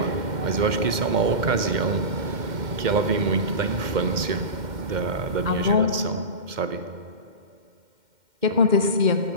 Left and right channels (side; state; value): left; late; 2.1 ms